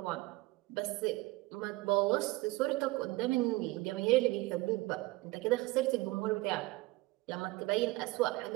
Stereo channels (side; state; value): left; quieter; 20.8 dB